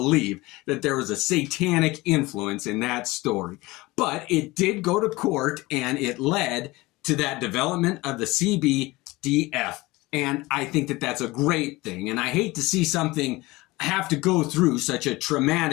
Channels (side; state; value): right; quieter; 21.0 dB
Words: that there was a satanic influence in that story. But it did go to court, and it led to that development of the CBDF. And I think that that's a great thing. And I hate to see something have to go through such a